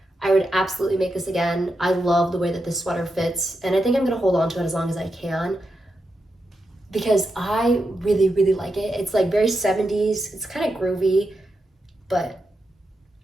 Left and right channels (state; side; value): normal; both; correlation 0.86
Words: I would absolutely make this again. I love the way that this sweater fits, and I think I'm gonna hold on to it as long as I can because I really, really like it. It's like very 70s, it's kind of groovy, but